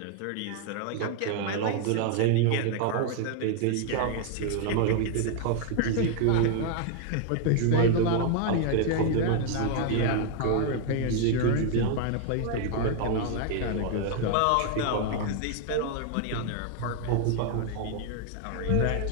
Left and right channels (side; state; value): both; different; correlation 0.00